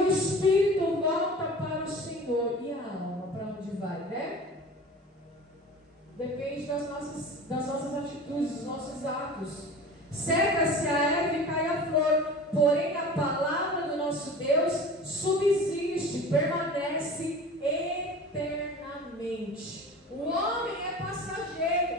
Espírito volta para o Senhor. E a alma, para onde vai, né? Depende das nossas atitudes, dos nossos atos. Seca-se a erva e cai a flor, porém a palavra do nosso Deus subsiste, permanece eternamente. O homem é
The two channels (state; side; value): normal; both; correlation 0.38